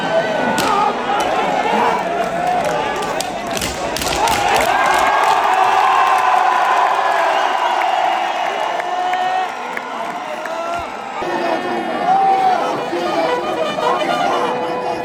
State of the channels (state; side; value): identical; both; correlation 1.00